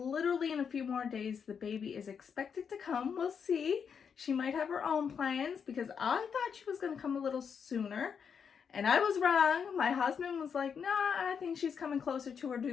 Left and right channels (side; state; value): right; quieter; 6.8 dB